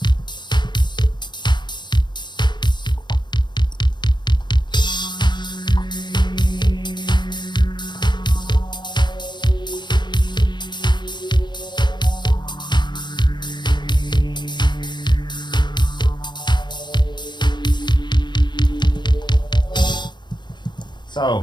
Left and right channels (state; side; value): late; right; 0.21 ms